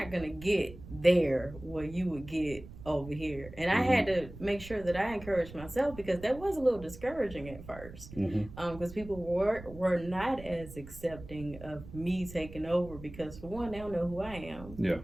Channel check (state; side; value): noise; right; rumble, 15 dB below the sound